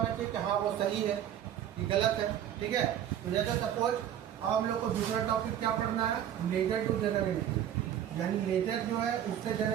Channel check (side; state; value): left; quieter; 10.4 dB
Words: चाहिए कि हाँ वो सही है कि गलत है। ठीक है, तो जैसे सपोज अब हम लोग को दूसरा टॉपिक क्या पढ़ना है, लेजर टू जर्नल एंट्री, यानी लेजर जो है उससे